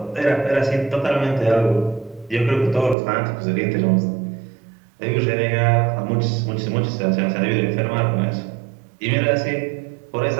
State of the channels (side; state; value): left; drops out; at 3.0 s